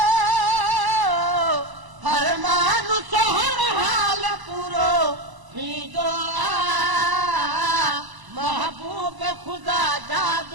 हर मानुसो हर हाल पूरो थींदो महबूब ख़ुदा जा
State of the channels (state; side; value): late; left; 1.0 ms